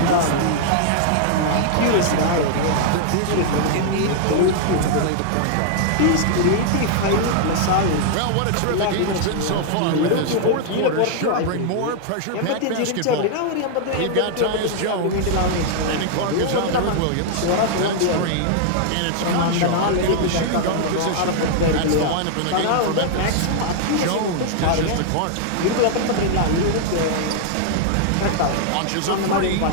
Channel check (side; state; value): both; different; correlation -0.01